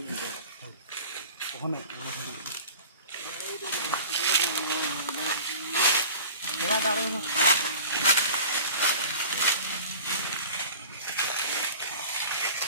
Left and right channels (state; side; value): inverted; both; correlation -0.40